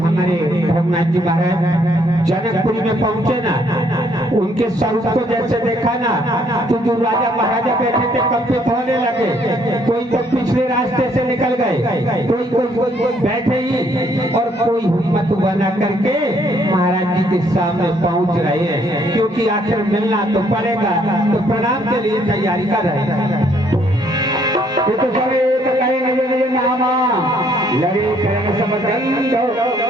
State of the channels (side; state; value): both; normal; correlation 0.67